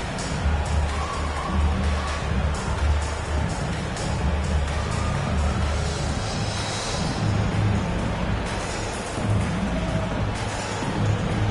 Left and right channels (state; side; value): identical; both; correlation 1.00